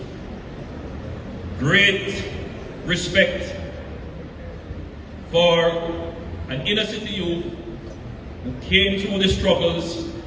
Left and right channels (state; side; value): identical; both; correlation 1.00